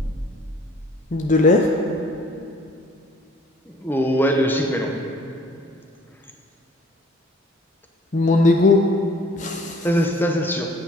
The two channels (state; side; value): normal; both; correlation 0.55